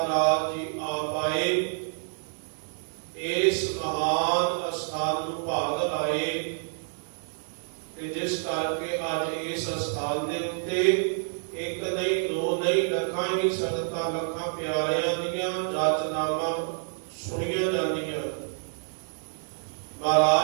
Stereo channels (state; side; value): silent; left; digital silence